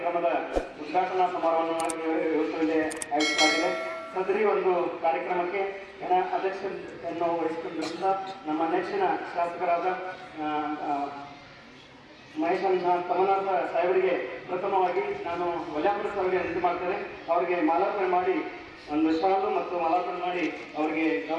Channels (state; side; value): identical; both; correlation 1.00